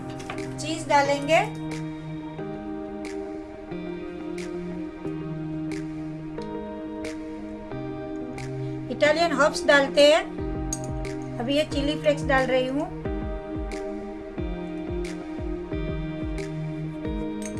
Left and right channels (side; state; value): both; identical; correlation 1.00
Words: चीज डालेंगे। इटालियन हर्ब्स डालते हैं। अभी ये चिली फ्लेक्स डाल रही हूँ।